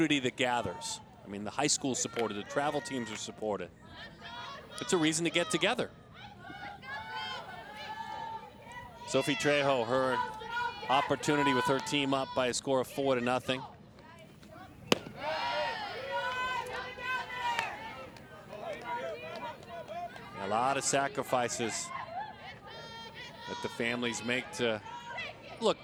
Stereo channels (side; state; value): both; identical; correlation 1.00